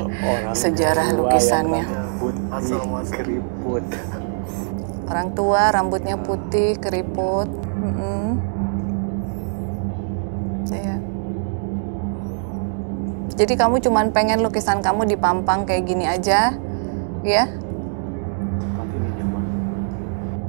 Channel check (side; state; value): left; silent; digital silence